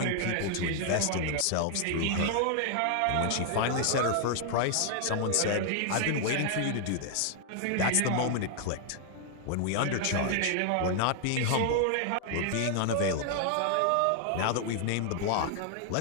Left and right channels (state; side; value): different; both; correlation 0.00